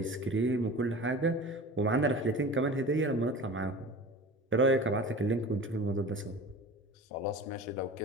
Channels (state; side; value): normal; both; correlation 0.36